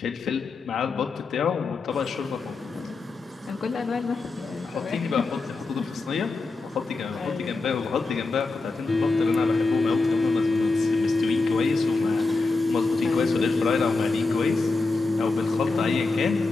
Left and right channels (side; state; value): right; quieter; 3.7 dB